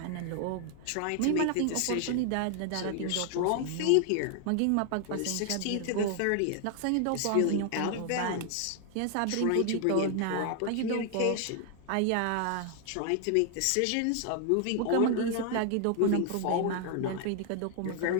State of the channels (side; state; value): both; different; correlation 0.00